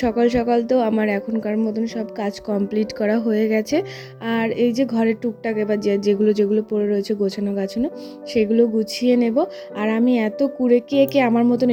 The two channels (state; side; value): identical; both; correlation 1.00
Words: সকাল সকাল তো আমার এখনকার মতন সব কাজ কমপ্লিট করা হয়ে গেছে। আর এই যে ঘরের টুকটাক এবার যেগুলো যেগুলো পড়ে রয়েছে গোছানো গাছানো, সেগুলো গুছিয়ে নেব। আর আমি এত কুড়ে, কে আমার মতন